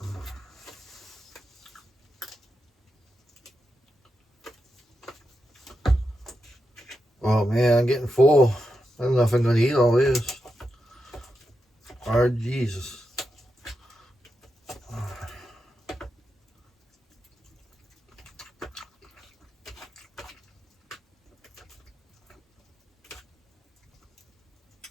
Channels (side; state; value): both; normal; correlation 0.87